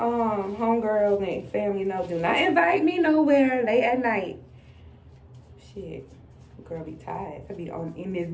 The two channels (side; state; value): both; identical; correlation 1.00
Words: and family know, do not invite me nowhere late at night. Shit. Girl be tired. I be in this